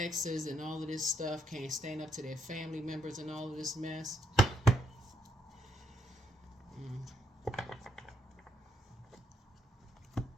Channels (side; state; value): both; normal; correlation 0.74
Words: and all of this stuff. Can't stand up to their family members and all of this mess.